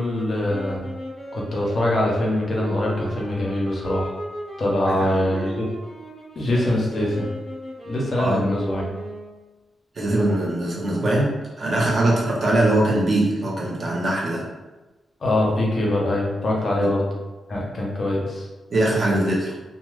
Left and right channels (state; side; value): normal; both; correlation 0.85